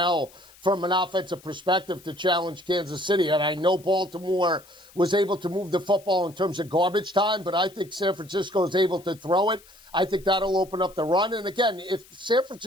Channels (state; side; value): noise; left; hiss, 25 dB below the sound